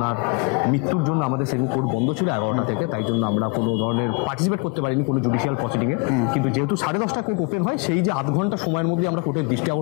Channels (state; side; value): quieter; right; 31.2 dB